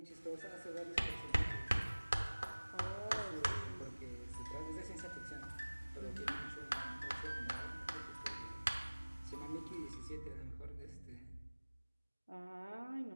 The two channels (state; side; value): inverted; both; correlation -1.00